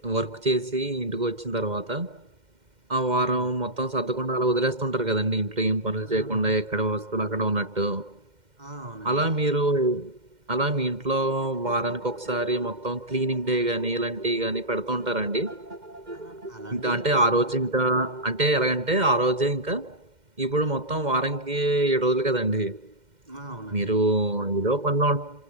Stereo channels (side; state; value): left; late; 2.1 ms